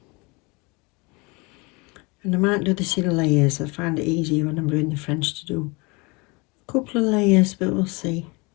And I might do this in layers. I find it easier when I'm doing the French to do a couple of layers, but we'll see.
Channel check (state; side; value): quieter; right; 27.7 dB